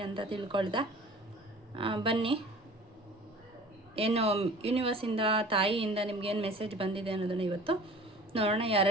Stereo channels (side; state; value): both; normal; correlation 0.44